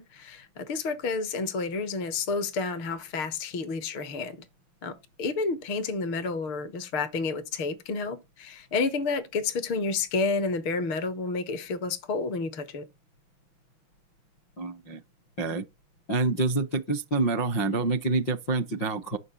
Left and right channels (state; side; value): late; right; 6.5 ms